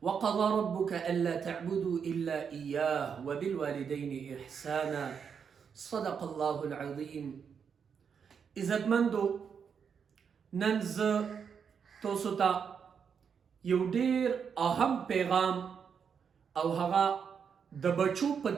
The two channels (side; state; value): left; quieter; 6.8 dB